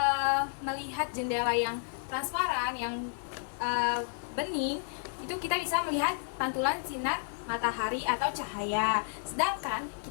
melihat jendela yang transparan, yang bening, itu kita bisa melihat pantulan sinar matahari atau cahaya. Sedangkan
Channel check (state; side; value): silent; right; 56 dB below the other